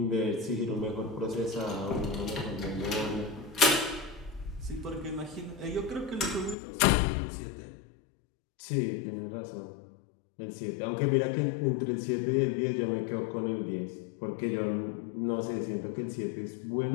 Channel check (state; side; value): drops out; right; at 6.6 s